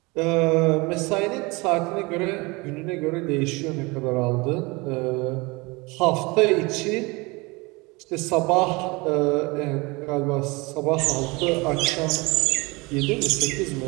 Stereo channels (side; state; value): left; quieter; 25.4 dB